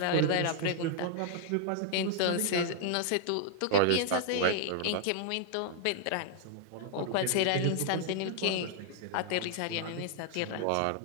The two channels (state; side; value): different; both; correlation -0.01